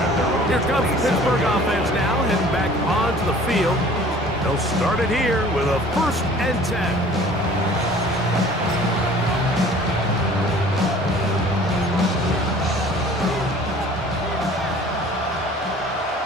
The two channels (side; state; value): both; normal; correlation 0.49